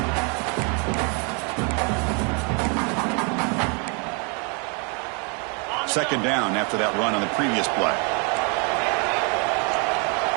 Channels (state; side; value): quieter; left; 35.4 dB